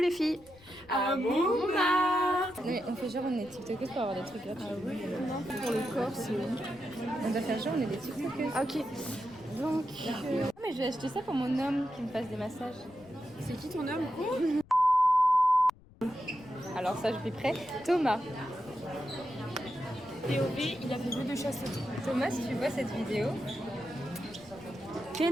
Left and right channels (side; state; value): left; noise; rumble, 24 dB below the sound